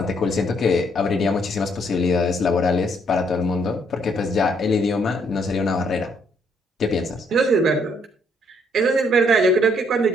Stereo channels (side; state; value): both; normal; correlation 0.69